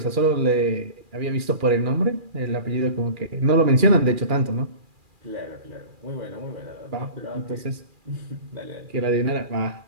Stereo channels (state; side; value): late; left; 2.4 ms